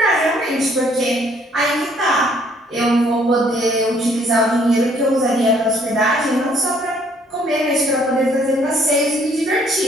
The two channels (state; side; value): normal; both; correlation 0.63